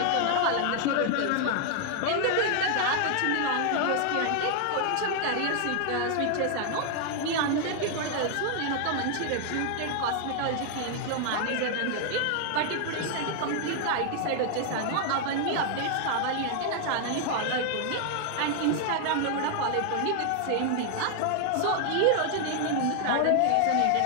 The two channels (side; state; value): both; different; correlation 0.00